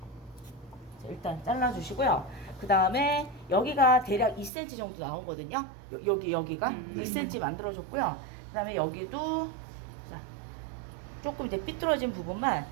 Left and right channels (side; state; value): left; drops out; at 4.5 s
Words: 일단 잘라주시고요. 그 다음에 여기가 대략 2cm 정도 나오거든요. 여기가 2cm 만들어줬고요. 그 다음에 여기도 자, 조금 이제 삐뚤어진 부분만